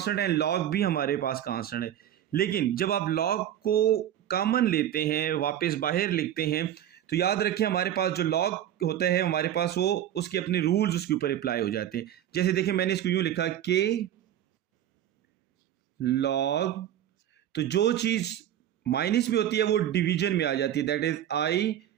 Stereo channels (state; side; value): quieter; left; 11.2 dB